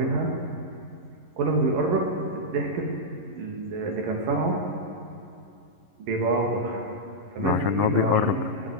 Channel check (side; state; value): left; late; 11 ms